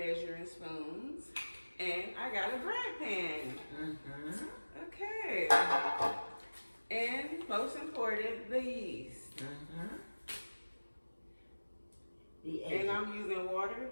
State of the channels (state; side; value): inverted; both; correlation -1.00